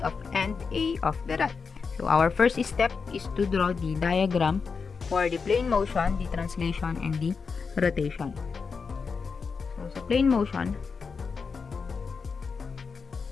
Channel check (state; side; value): quieter; right; 5.3 dB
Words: end A of the rod. So our first step is to draw the diagram for the plane motion, the translation, and the rotation. So sa plane motion,